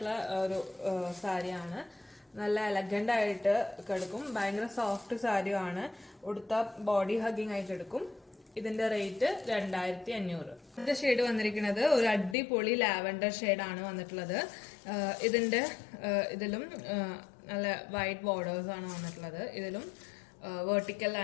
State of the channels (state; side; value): drops out; right; at 12.4 s